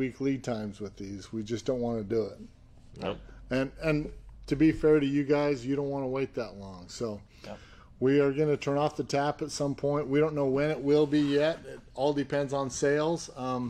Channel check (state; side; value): identical; both; correlation 1.00